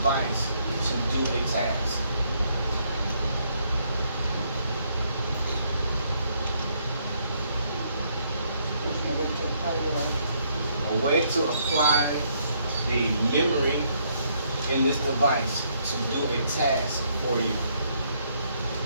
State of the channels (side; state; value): both; inverted; correlation -0.71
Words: to do a task. A way to apply the memory in this device to do a task for you.